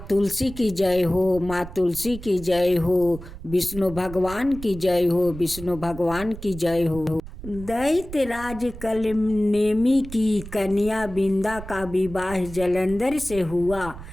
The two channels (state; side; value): noise; right; rumble, 13 dB below the sound